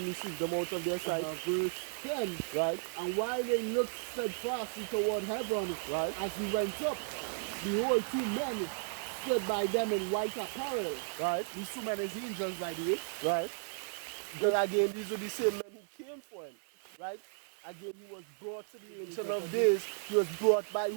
received them out of their sight. Verse 10, Right. and while they looked steadfastly toward heaven, Right. as he went up, behold, 2 men stood by them in white apparel. Right. These 2 men is angels, by the way. Right. Because again, these were the same men who came for him. Right. Again, he was brought to the Ancient of Days. He was brought by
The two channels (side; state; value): left; silent; digital silence